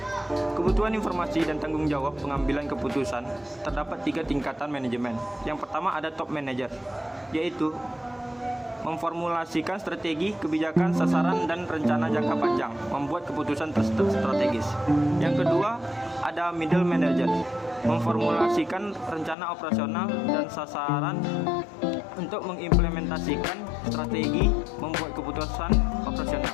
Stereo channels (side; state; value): right; drops out; at 19.4 s